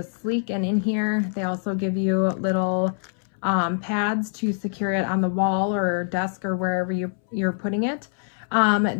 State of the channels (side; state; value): right; silent; 62 dB below the other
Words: sleek and in here. They also give you little pads to secure it on the wall or desk or wherever you're putting it.